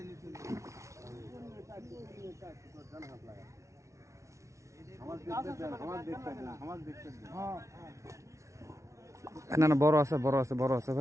না না বড় আছে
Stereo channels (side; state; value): left; late; 0.14 ms